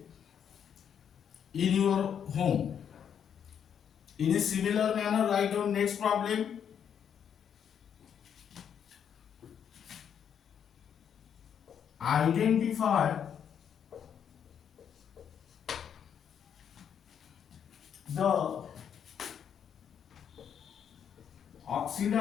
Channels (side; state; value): right; quieter; 8.3 dB